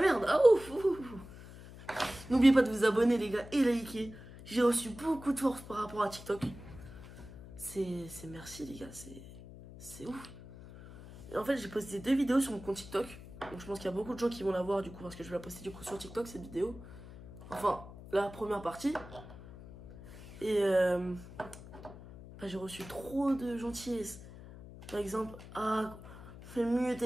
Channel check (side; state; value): left; noise; hum, 16 dB below the sound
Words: merde, ah ouf. N'oubliez pas de vous abonner les gars et liker. J'ai reçu beaucoup de force par rapport à TikTok. C'est merci les gars, c'est ouf. Et en fait j'ai posté 2 vidéos sur mon compte TikTok. Donc je pense qu'il y a beaucoup de gens qui vont la voir du coup parce que je vais la poster du coup sur TikTok cette vidéo. Enfin la première partie. Et j'ai reçu trop de gentillesse. Par exemple, ah, fais mieux